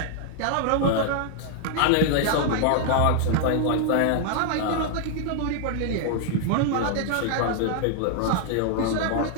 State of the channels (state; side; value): different; both; correlation 0.00